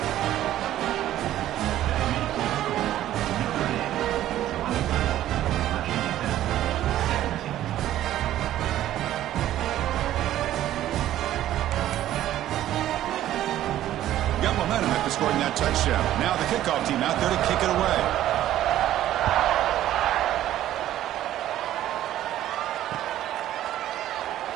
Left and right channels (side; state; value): left; quieter; 13.0 dB